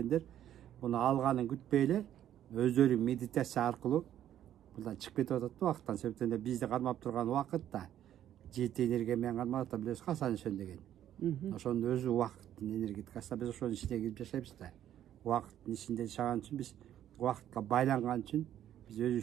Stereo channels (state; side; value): quieter; left; 11.2 dB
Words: буну алганын күтпөй эле өздөрү медитация аркылуу мындан чыгып кетип атат да убакыттан. Себептен бизди кармап турган убакыт да жети энергия менен кармап атат, билесиз го, Асанишон деген. Ошонун өзү убакыттын энергетикасы. Биз ошонун ичине кирип жашайбыз да. Убакыттын ичинде жашаган үчүн, биз убакытка байланган үчүн биз